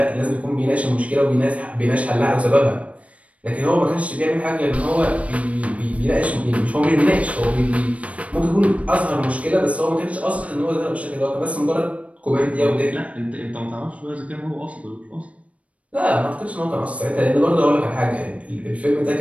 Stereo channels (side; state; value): left; late; 0.065 ms